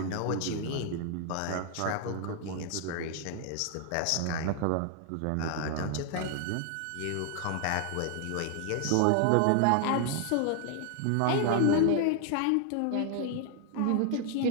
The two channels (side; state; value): both; different; correlation 0.00